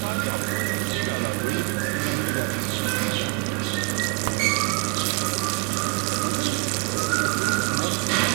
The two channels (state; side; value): quieter; left; 30.3 dB